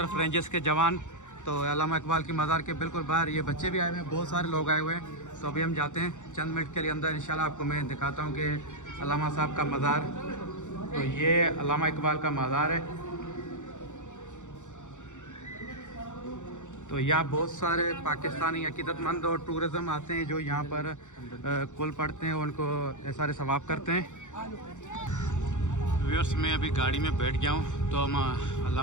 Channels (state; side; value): late; right; 0.85 ms